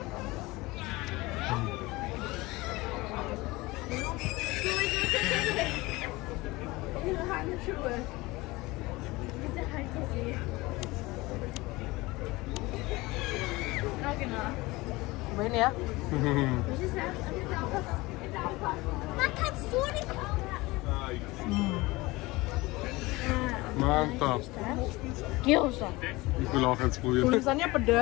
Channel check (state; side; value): quieter; right; 21.5 dB